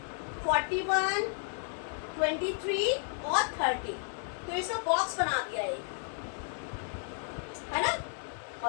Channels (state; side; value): silent; right; digital silence